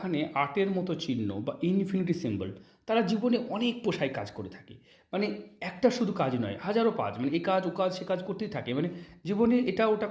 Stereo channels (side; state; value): both; identical; correlation 1.00